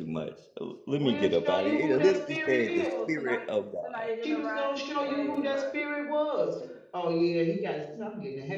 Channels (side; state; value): both; identical; correlation 1.00